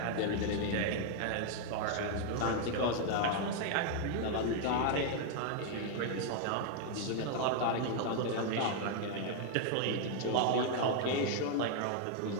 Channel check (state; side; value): different; both; correlation 0.00